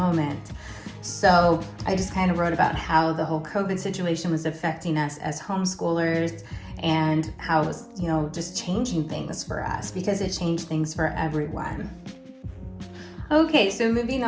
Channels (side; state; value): both; identical; correlation 1.00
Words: So I just kind of wrote about how the whole COVID situation was affecting us as homeschoolers and how it was, just changing things for us, because it changed things for everyone. Okay, so moving